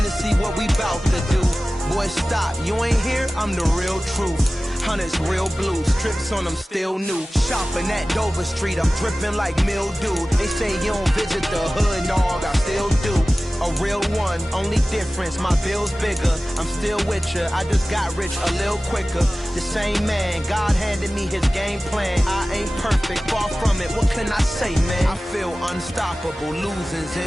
see what we bout to do. Boy, stop. You ain't here, I'm the real truth. Hunters real blue, strips on them still new. Shopping at Dover Street, I'm dripping like mildew. They say you don't visit the hood, dog, I still do. A real one, only difference, my bill's bigger. I'm still with ya, I just got rich a little quicker. The same man, God handed me his game plan. I ain't perfect, far from it, what can I say, man? I feel unstoppable, losing's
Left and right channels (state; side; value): normal; both; correlation 0.96